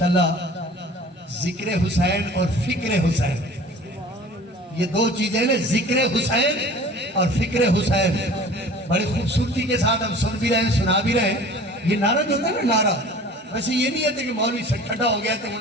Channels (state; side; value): normal; both; correlation 0.44